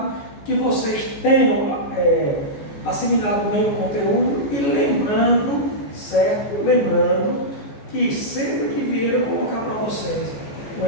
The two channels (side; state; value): right; late; 14 ms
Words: que vocês tenham assimilado bem o conteúdo e lembrando, certo? Lembrando que sempre que Vieira colocar para vocês um